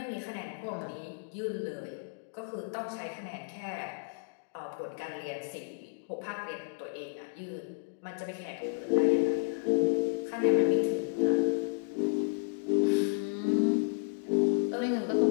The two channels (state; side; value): silent; right; digital silence